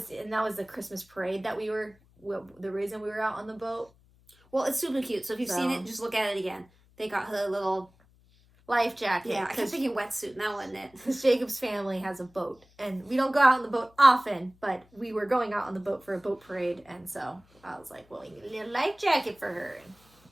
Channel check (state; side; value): noise; left; hum, 30 dB below the sound